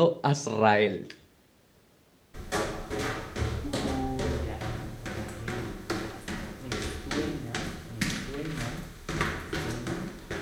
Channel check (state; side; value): identical; both; correlation 1.00